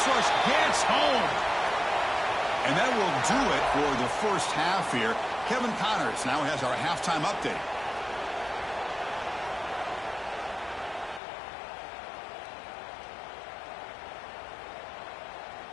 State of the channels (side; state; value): right; drops out; at 11.2 s